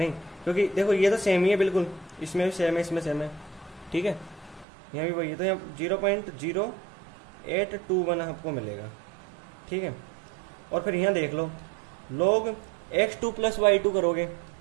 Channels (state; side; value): drops out; left; at 4.7 s